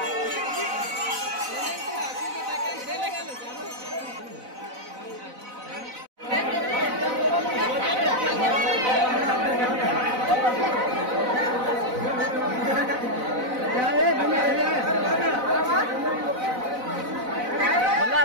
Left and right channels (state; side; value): late; left; 4.0 ms